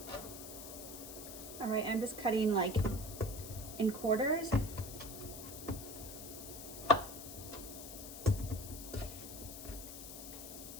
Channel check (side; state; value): left; noise; hiss, 11 dB below the sound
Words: All right, I'm just cutting like in quarters.